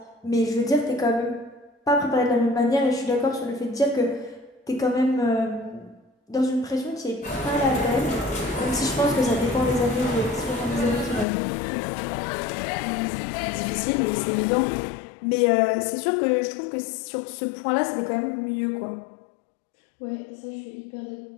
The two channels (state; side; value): drops out; right; at 11.2 s